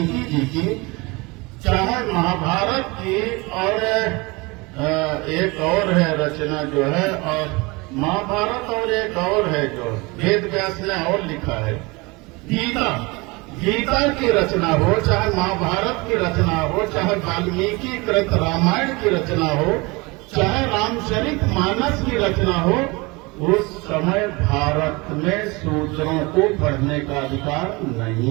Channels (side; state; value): left; quieter; 25.5 dB